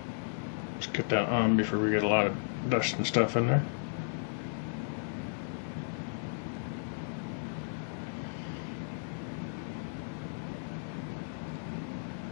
Let's get that on before we get a lot of dust and stuff in there.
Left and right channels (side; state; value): right; silent; digital silence